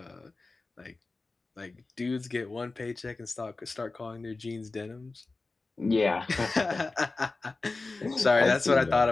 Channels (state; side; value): quieter; right; 3.6 dB